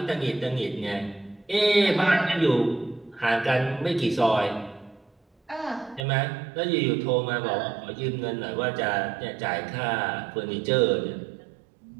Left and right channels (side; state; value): left; drops out; at 6.1 s